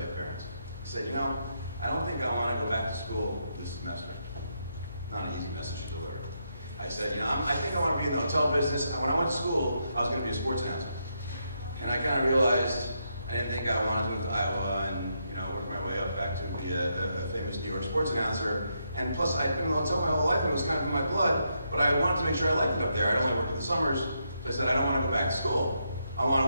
your parents. I said, I don't think I want to go back to school this semester. Not an easy message to deliver. I said, I think I want to be in the hotel business. When I went to school, I was going to be a sports announcer. And I kind of realized I didn't think I wanted to move to Iowa and work my way up back to be a famous New York sports announcer. And plus, I'd been in the hotel my whole life, and it was kind of in my blood, but I wanted to make sure I liked it up there. I'd only worked in the summers, so I said, I don't want to go back to school. I want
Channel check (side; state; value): both; inverted; correlation -0.80